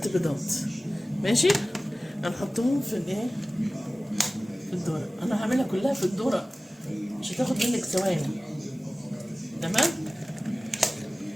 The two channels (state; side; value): normal; both; correlation 0.97